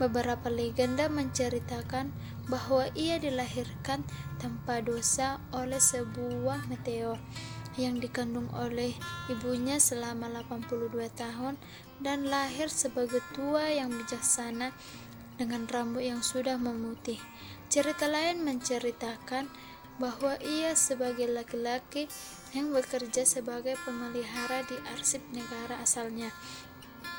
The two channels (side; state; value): both; identical; correlation 1.00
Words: legenda menceritakan bahwa ia dilahirkan tanpa dosa oleh sebuah meteor yang dikandung oleh ibunya selama 82 tahun dan lahir sebagai tua yang bijaksana dengan rambut yang sudah memutih. Cerita lain menceritakan bahwa ia sebagai laki-laki yang bekerja sebagai pemelihara di arsip negara asalnya